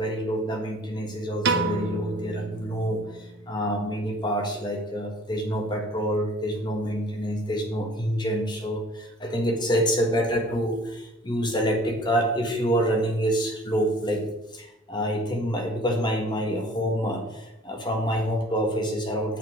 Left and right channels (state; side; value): normal; both; correlation 0.50